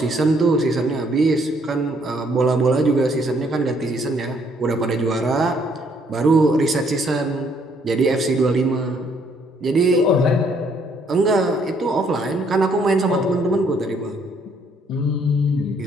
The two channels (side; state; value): both; normal; correlation 0.67